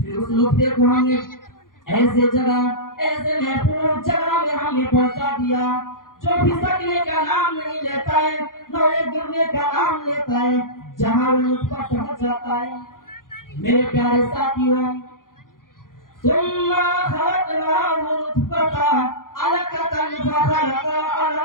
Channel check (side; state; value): right; late; 0.90 ms